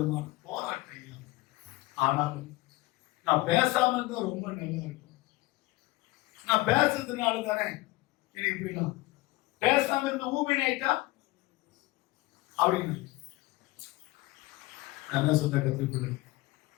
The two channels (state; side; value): quieter; right; 20.1 dB